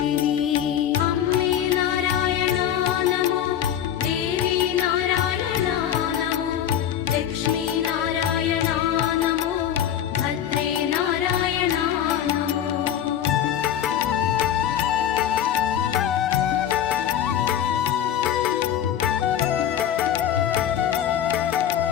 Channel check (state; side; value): quieter; right; 10.1 dB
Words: അമ്മേ നാരായണാ നമോ ദേവി നാരായണാ നമോ ലക്ഷ്മീ നാരായണാ നമോ ഭദ്രേ നാരായണാ നമോ.